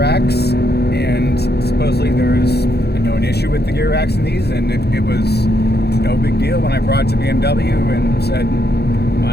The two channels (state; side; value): late; right; 0.48 ms